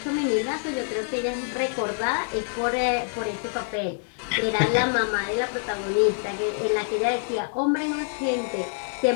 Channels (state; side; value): silent; right; 61 dB below the other